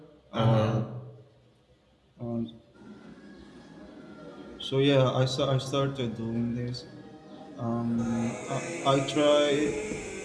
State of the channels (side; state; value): both; identical; correlation 1.00